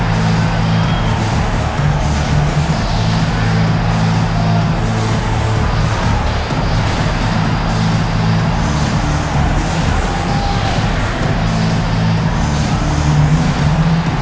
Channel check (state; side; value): identical; both; correlation 1.00